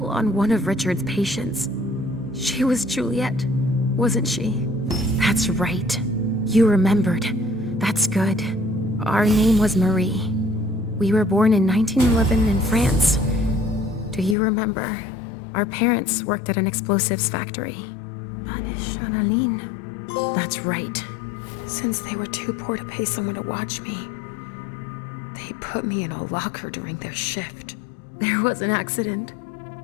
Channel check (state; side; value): drops out; right; at 14.4 s